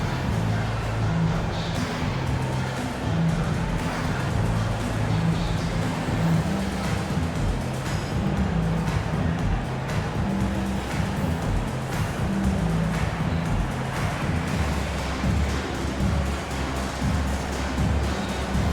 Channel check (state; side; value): identical; both; correlation 1.00